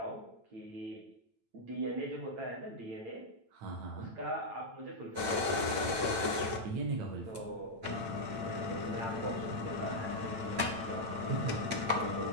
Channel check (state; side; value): late; left; 9.0 ms